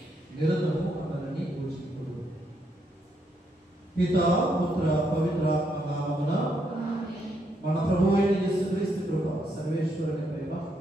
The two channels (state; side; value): normal; both; correlation 0.76